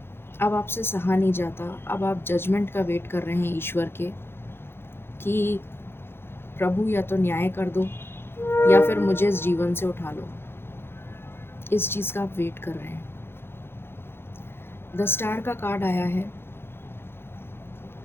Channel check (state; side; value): late; right; 0.11 ms